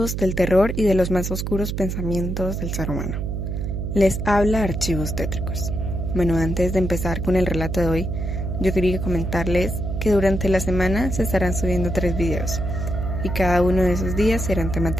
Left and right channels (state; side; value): noise; right; hum, 3 dB below the sound